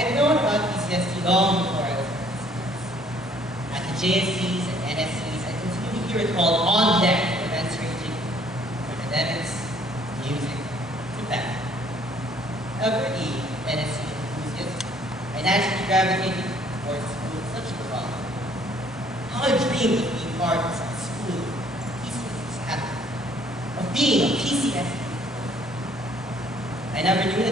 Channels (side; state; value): both; normal; correlation 0.61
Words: known about PCSD long before I was at the JSCs and NSCs. I continue to hear it called on deck for events ranging from academics, music, to fashion. However, NSC enthusiast, I naturally gravitated towards schools such as Rock. How I dreamed of being part of a school PCSD happened, of being a PCSD. I never knew